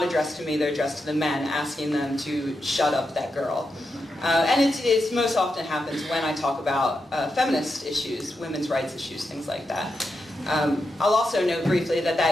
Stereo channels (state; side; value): normal; both; correlation 0.86